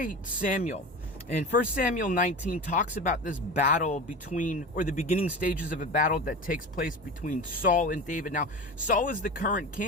Samuel. And 1 Samuel 19 talks about this battle or the beginning stages of a battle that takes place between Saul and David. Now, Saul is the current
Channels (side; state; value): both; normal; correlation 0.30